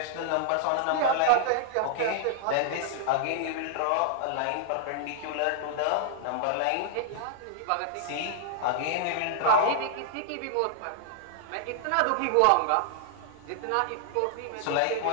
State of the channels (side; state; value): both; different; correlation 0.00